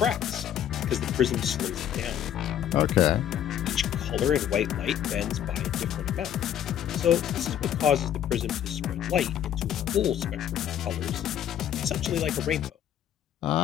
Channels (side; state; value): right; quieter; 10.3 dB